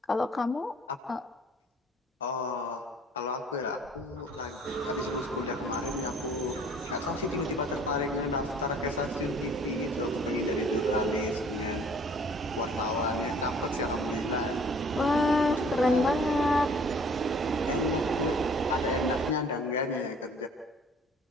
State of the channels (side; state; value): both; normal; correlation 0.54